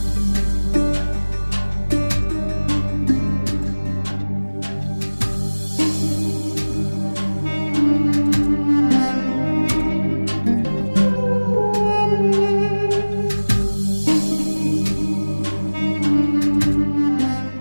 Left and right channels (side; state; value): both; inverted; correlation -1.00